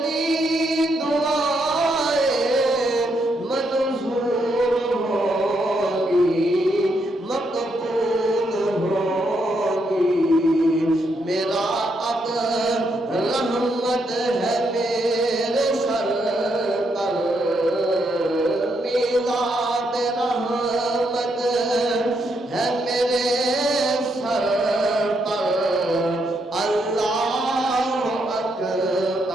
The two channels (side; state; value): both; normal; correlation 0.78